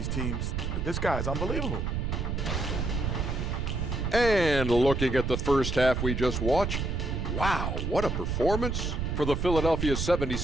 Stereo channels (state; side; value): noise; right; rumble, 2 dB below the sound